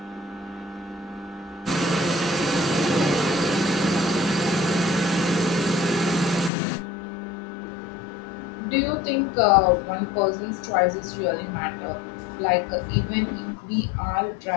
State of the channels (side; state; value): right; drops out; at 6.5 s